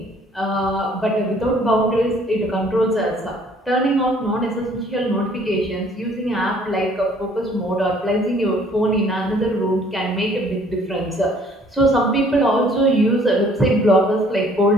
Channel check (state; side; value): normal; both; correlation 0.58